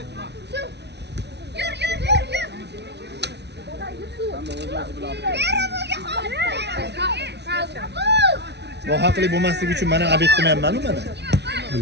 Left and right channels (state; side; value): late; left; 0.50 ms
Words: Yur. Nohaqlik bo'lmasligi uchun mana abet qilmayapman-ku mana.